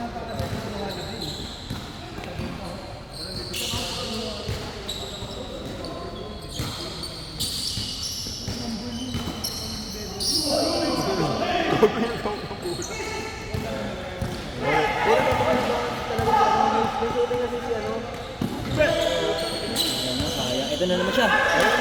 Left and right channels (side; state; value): both; identical; correlation 1.00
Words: Ito na naman siya.